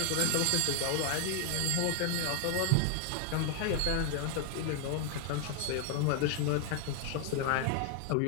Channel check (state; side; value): different; both; correlation 0.00